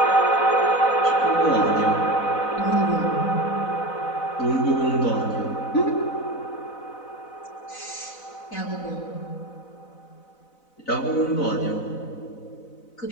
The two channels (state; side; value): late; right; 4.0 ms